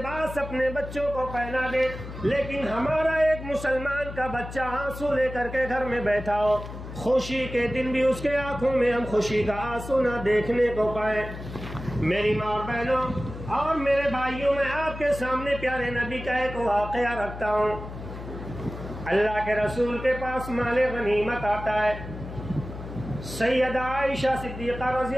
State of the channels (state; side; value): noise; left; hum, 11 dB below the sound